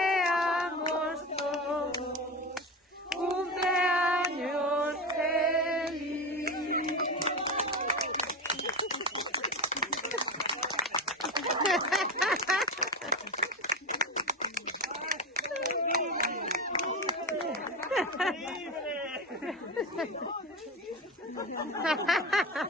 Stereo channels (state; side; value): normal; both; correlation 0.21